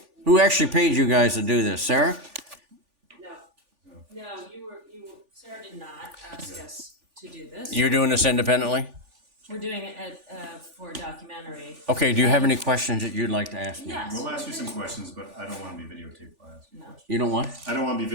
Who actually paid you guys to do this? Sarah? No, Sarah did not ask us to do this. You're doing this independently? We're doing it for a documentary. Okay, do you have any questions that you'd like to ask me? Yes. We'll ask you some questions, but I don't want to be videotaped while I ask you No. questions. You don't want? I don't want to be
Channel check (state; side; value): late; left; 3.4 ms